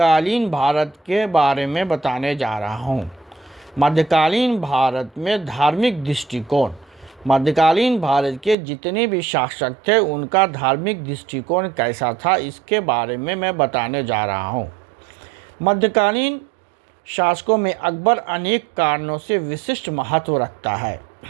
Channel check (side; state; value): left; drops out; at 8.6 s